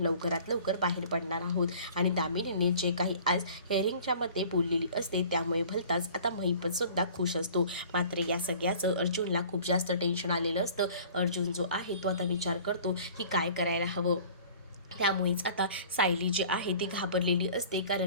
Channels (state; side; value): inverted; both; correlation -0.47